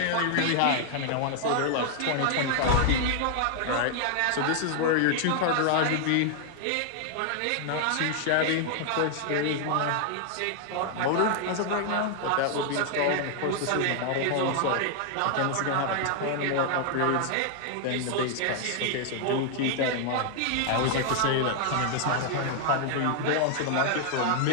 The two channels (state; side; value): different; both; correlation 0.00